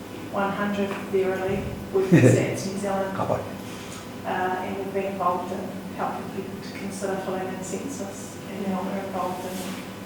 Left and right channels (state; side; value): identical; both; correlation 1.00